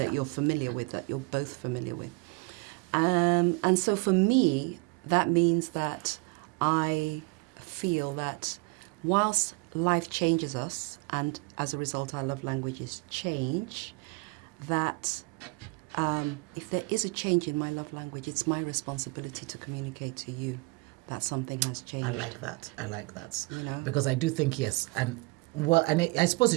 you're familiar with, that you're both familiar with. And so for me, that means that I feel that whilst life changes us, and as a result our love languages change, that if there is a change in my love language, it's my responsibility to communicate to you that something has changed. I like that. You know? Because I do think, yes, and I suppose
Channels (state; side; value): quieter; left; 27.2 dB